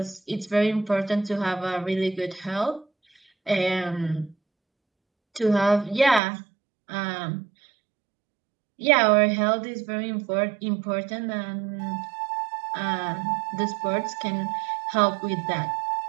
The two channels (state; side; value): drops out; left; at 6.2 s